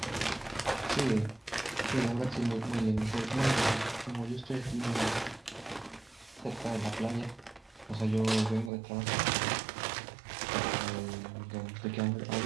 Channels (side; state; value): left; drops out; at 8.7 s